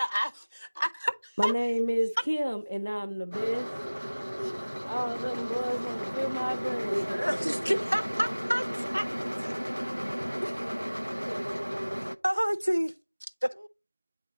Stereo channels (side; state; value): both; inverted; correlation -1.00